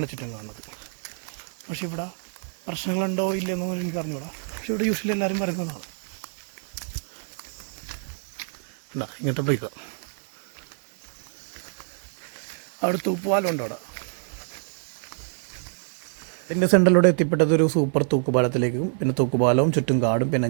ചുറ്റും കാണുന്നത്. പക്ഷെ ഇവിടെ പ്രശ്നങ്ങളുണ്ടോ ഇല്ലെന്നൊന്നും എനിക്ക് അറിഞ്ഞൂടാ. പക്ഷെ ഇവിടെ യൂഷ്വലി എല്ലാവരും പറയുന്നതാണ്. എന്താ ഇങ്ങനത്തെ ബ്രേക്ക് അവിടെ തൂക്കുപാലം ഉണ്ട്. അവിടെ എൻ്റെ സെൻറ്ററിലൂടെ എത്തിപ്പെട്ടത് ഒരു സൂപ്പർ തൂക്കുപാലത്തിലേക്കും. പിന്നെ തൂക്കുപാലവും ചുറ്റും കാടും പിന്നെ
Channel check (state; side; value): silent; left; digital silence